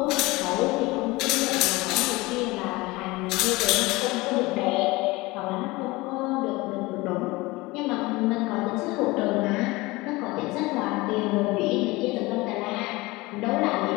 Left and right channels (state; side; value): quieter; right; 21.9 dB